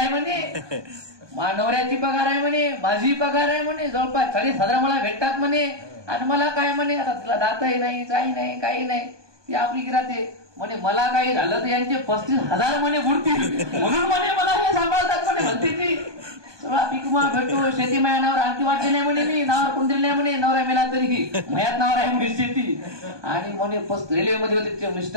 म्हणे, नवऱ्याची पगार आहे म्हणे, माझी पगार आहे म्हणे, जवळपास 40,000 मला भेटतात म्हणे, आणि मला काय म्हणे आता तिला दातही नाही, काही नाही, काही नाही, ती आपली गिराते म्हणे, मला काही झालं तर यांचे 35,000 म्हणे बुडतील, म्हणून म्हणे मला हे सांभाळतात म्हणे भंतेजी. सगळा पिकमा भेटतो, शेती माझ्या नावावर आणखी वाटते नाही म्हणे, मी नावावर कोण दिली नाही म्हणे, नवरा मेला तरी मयात नावावर आहे म्हणे शेती. आणि म्हणे रेल्वेमध्ये होते ते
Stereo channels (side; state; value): left; late; 1.2 ms